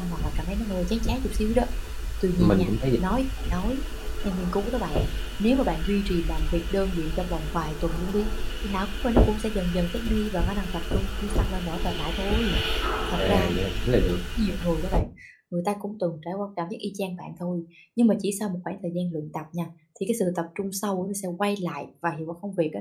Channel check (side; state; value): both; identical; correlation 1.00